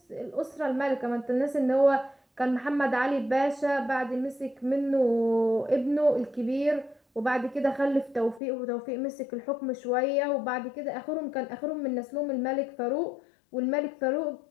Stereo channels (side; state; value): right; drops out; at 8.4 s